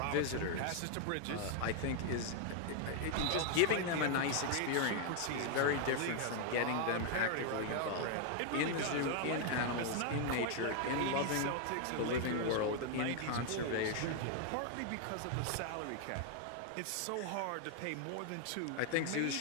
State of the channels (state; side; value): different; both; correlation 0.00